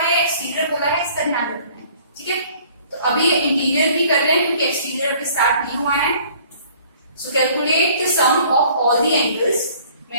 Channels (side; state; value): both; inverted; correlation -0.55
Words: है, एक्सटीरियर बोला है, इसका ध्यान रखना है। ठीक है, तो अभी इंटीरियर भी कर रहे हैं क्योंकि एक्सटीरियर अभी स्टार्ट नहीं हुआ है। So calculate the sum of all the angles. मैं